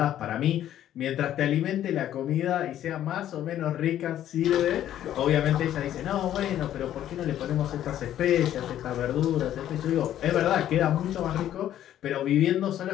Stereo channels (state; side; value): quieter; right; 11.7 dB